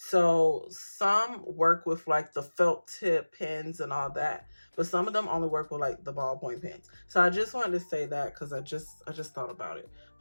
some work with like the felt tip pens and all that, but some of them only work with like the ballpoint pens. So I just wanted to say that because I just thought about it.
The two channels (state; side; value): inverted; both; correlation -1.00